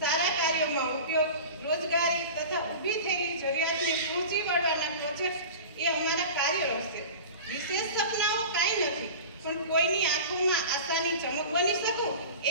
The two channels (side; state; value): both; inverted; correlation -0.35